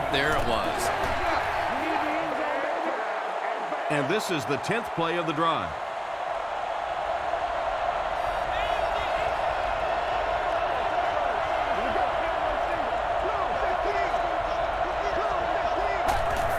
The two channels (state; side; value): identical; both; correlation 1.00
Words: there it was. And this is the 10th play of the drive.